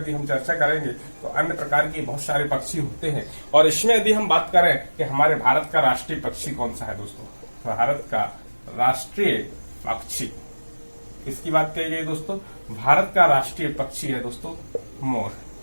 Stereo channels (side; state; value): both; inverted; correlation -1.00